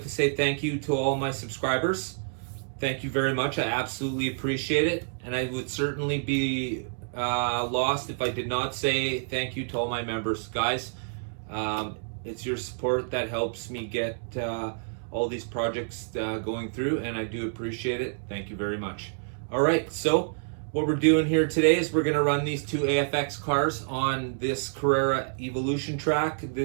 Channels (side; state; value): left; silent; digital silence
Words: to say thank you to all my subscribers. Thank you very much. I absolutely appreciate it, and I would certainly be lost if I did not say thank you to all my members. Guys, it's your support that helps me get all these projects going through, and I do appreciate it. Thank you very much. All right, so what we're doing here today is we're going to run these two AFX cars on this Carrera Evolution track.